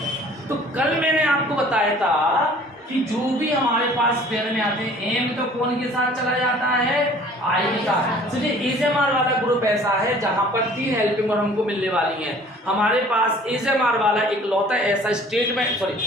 हैं। तो कल मैंने आपको बताया था कि जो भी हमारे पास पेयर में आते हैं, एम तो कौन के साथ चला जाता है? आई के साथ। चलिए इज एम आर वाला ग्रुप ऐसा है जहां पर 3 हेल्पिंग वर्ब हमको मिलने वाली हैं। हमारे पास इज एम आर वाला इकलौता ऐसा स्टेटमेंट, सॉरी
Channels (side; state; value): both; normal; correlation 0.51